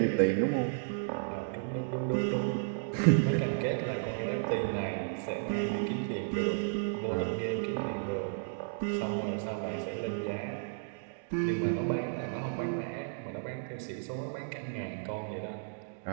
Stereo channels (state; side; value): silent; left; digital silence